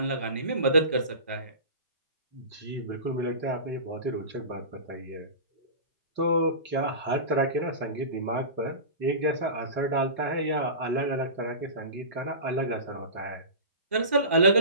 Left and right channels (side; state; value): both; inverted; correlation -0.31